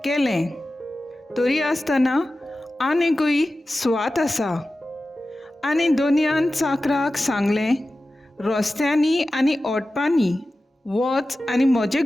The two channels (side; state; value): both; normal; correlation 0.94